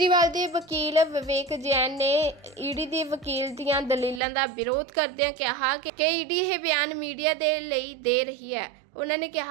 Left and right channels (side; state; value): left; drops out; at 4.2 s